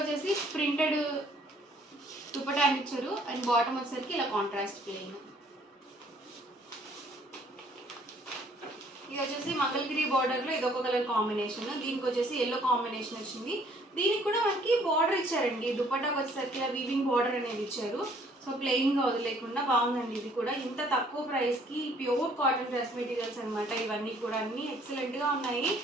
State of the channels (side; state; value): both; normal; correlation 0.61